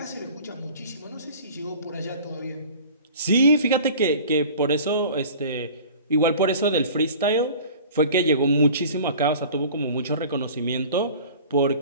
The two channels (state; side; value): inverted; both; correlation -0.43